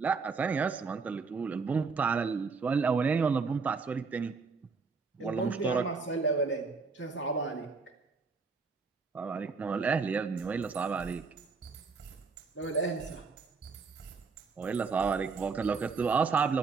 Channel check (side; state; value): left; quieter; 4.8 dB